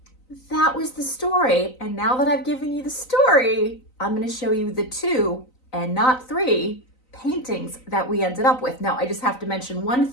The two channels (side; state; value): right; late; 3.9 ms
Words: that was the story. And now that I've given you the story, I'm going to show you the 2 and not 3 paintings that we ended up with. Now, I just have to mention one